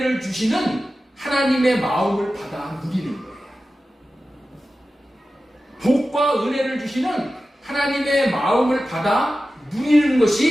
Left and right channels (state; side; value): normal; both; correlation 0.94